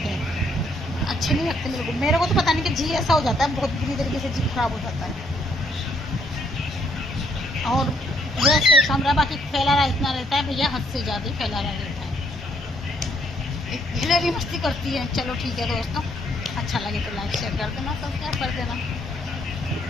हैं, अच्छे नहीं लगते मेरे को तो पता नहीं कि जी ऐसा हो जाता है, बहुत बुरी तरीके से जी खराब हो जाता है। और वैसे कमरा बाकी फैला रहा इतना रहता है भैया, हद से ज़्यादा फैला रहा रहता है, हिलेरी मस्ती करती है। चलो ठीक है दोस्तों, अच्छा लगे तो लाइक शेयर कर देना, सब्सक्राइब कर देना।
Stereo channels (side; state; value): both; normal; correlation 0.69